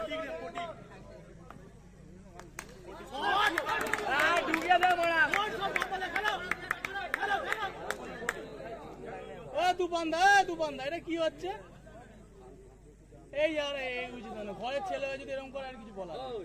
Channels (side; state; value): both; identical; correlation 1.00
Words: দুবান্ধা এটা কি হচ্ছে? এই আর এই উচিত না, ঘরের ছেলে হয়ে যদি এরকম করে আর কিছু বলা